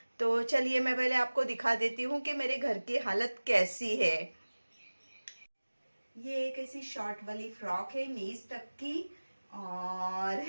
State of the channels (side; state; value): both; inverted; correlation -1.00